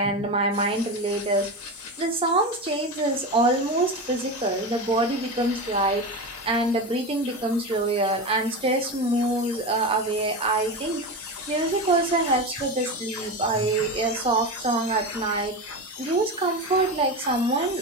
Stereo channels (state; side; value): normal; both; correlation 0.21